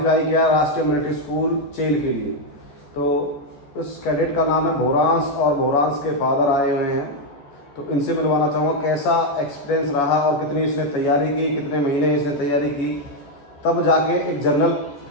किया राष्ट्रीय मिलिट्री स्कूल चेल के लिए। तो उस कैडेट का नाम है भोरांस और भोरांस के फादर आए हुए हैं। तो इनसे मिलवाना चाहूँगा कैसा एक्सपीरियंस रहा और कितनी इसने तैयारी की, कितने महीने इसने तैयारी की, तब जाके एक जनरल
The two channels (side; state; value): right; late; 14 ms